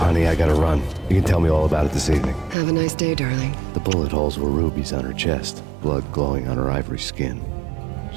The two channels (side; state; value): left; drops out; at 2.6 s